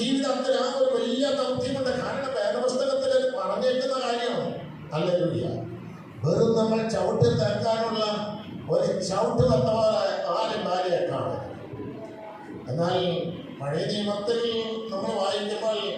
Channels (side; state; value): both; identical; correlation 1.00